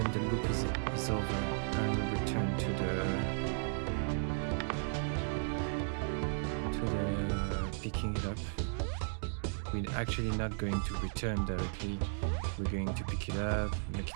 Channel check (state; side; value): silent; left; digital silence